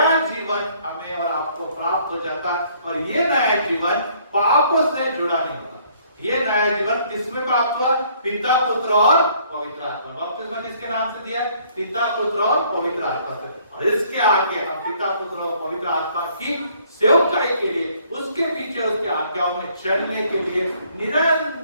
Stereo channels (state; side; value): inverted; both; correlation -0.62